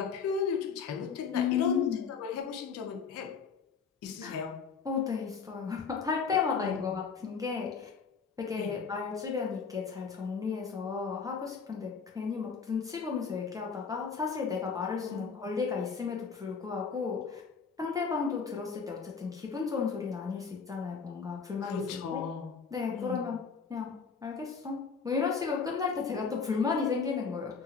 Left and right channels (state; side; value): quieter; right; 5.6 dB